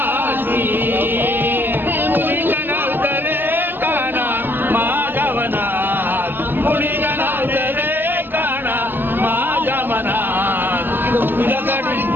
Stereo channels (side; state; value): left; late; 0.095 ms